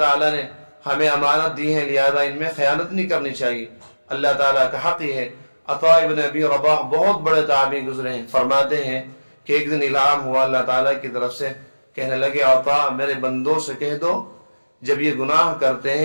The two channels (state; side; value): inverted; both; correlation -1.00